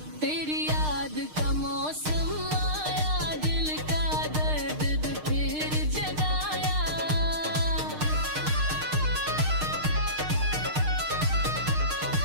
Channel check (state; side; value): late; left; 6.5 ms